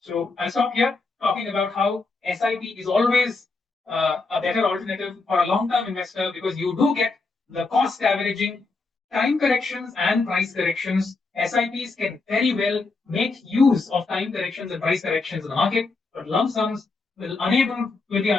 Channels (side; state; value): right; quieter; 3.9 dB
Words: I'll stop here talking about how SIP is always a better alternative for a long-term investor because you do get the cost averaging, time corrections and price corrections. SIPs can very well make use of time corrections and price corrections in the market, but lump sums will be